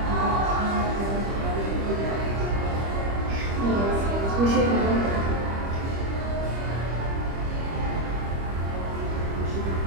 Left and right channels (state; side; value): late; left; 25 ms